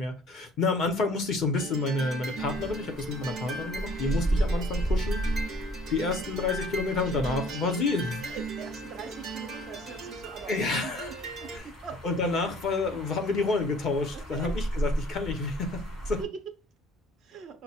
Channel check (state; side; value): normal; both; correlation 0.54